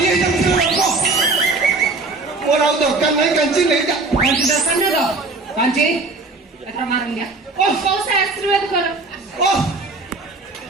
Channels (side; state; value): left; quieter; 3.5 dB